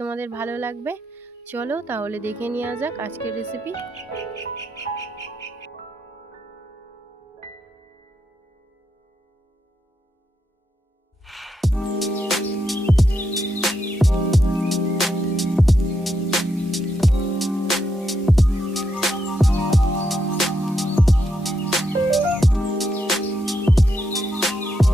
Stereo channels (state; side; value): normal; both; correlation 0.81